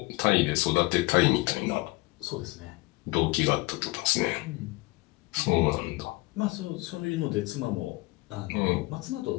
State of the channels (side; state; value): right; quieter; 22.8 dB